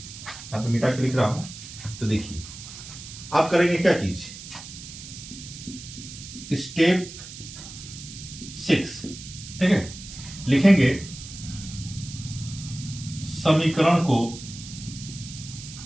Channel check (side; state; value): right; noise; hiss, 13 dB below the sound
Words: पे मिटा के लिख रहा हूं। तो देखिए आप करेंगे क्या चीज, स्टेप 6, ठीक है, लिखेंगे समीकरण